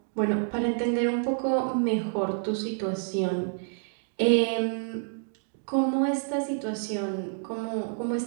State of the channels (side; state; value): left; silent; digital silence